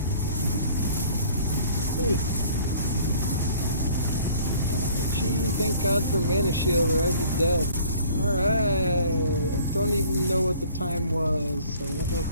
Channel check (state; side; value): inverted; both; correlation -0.53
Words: Thank God for Mana Shield, or I'd be dead. Alright. I don't even know what the time was, so I don't know